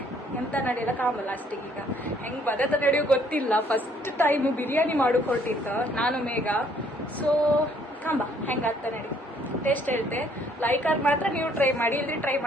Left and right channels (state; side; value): normal; both; correlation 0.64